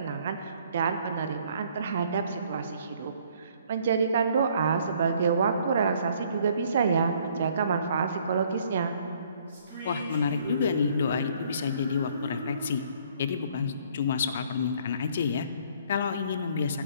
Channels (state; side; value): inverted; both; correlation -0.61